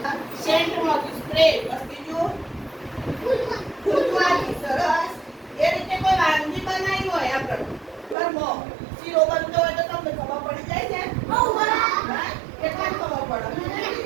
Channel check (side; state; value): left; drops out; at 8.2 s